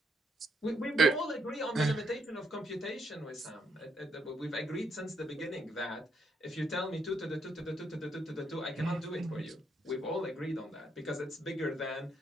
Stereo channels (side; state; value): both; normal; correlation 0.75